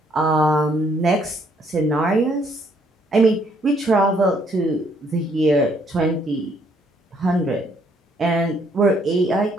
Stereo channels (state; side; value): normal; both; correlation 0.68